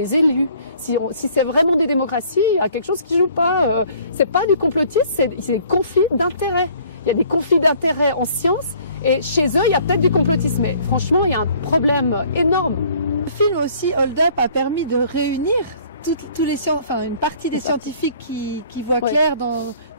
élit. Si c'est vraiment des démocraties, il y a quelque chose qui joue pas. C'est pas du complotisme, c'est des conflits d'intérêts. Il y a des conflits d'intérêts en science et chez eux, il y a peut-être du complotisme. Mais franchement, il y a un problème énorme. Le film aussi, Hold Up, a permis de réunir une partie des scientifiques qui voient clair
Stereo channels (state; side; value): inverted; both; correlation -0.56